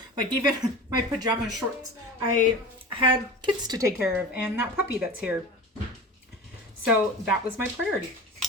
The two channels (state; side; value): normal; both; correlation 0.33